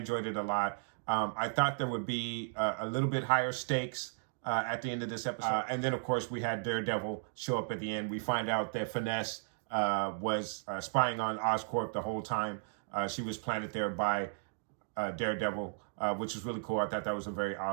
it a lot. I thought there would be a little bit higher stakes at the end of this episode. And then, of course, we had Daredevil show up at the end. We find out that Finesse was spying on Oscorp the whole time. She was planted there by Daredevil, which was really cool. I thought that was a very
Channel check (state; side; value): silent; left; digital silence